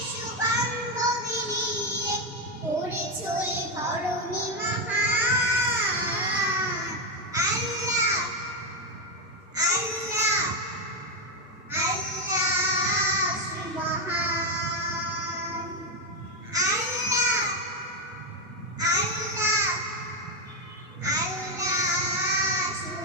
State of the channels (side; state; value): both; normal; correlation 0.07